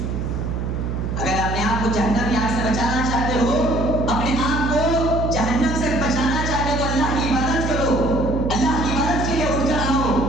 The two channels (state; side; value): noise; right; hum, 2 dB below the sound